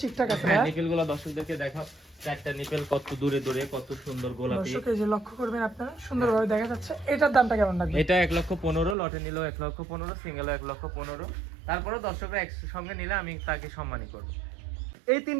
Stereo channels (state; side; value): drops out; left; at 9.0 s